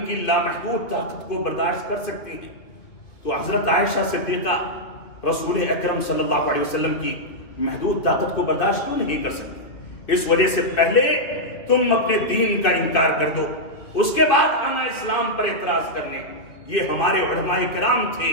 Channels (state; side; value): late; right; 2.8 ms